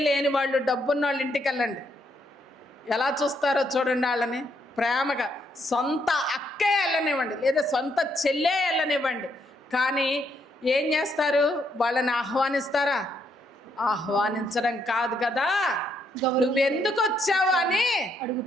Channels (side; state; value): both; normal; correlation 0.75